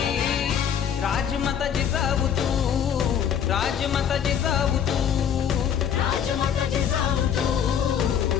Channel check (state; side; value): quieter; right; 8.6 dB